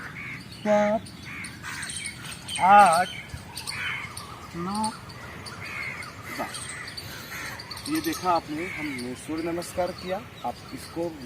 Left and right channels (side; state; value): both; identical; correlation 1.00